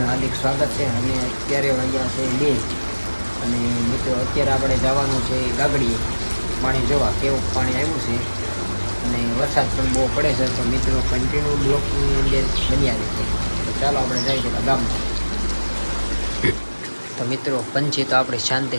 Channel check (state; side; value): inverted; both; correlation -1.00